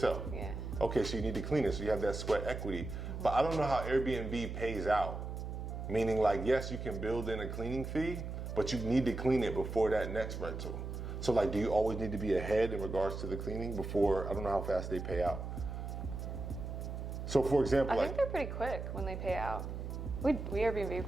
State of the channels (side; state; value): right; noise; hum, 6 dB below the sound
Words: Yeah. Okay, so you need to clean it, so you have that sweat equity. But I don't know how Airbnb pays out. Meaning, like, yes, you can build in a cleaning fee, but you need to clean it before that next rental. So, like, do you always need to be ahead in regards to the cleaning before? I don't know how fast they pay out. So, for example, I think they're pretty quick when they pay out. We Airbnb